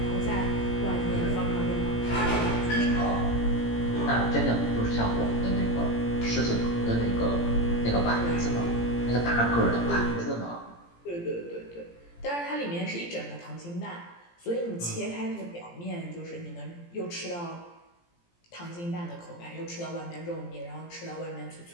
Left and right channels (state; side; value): late; right; 17 ms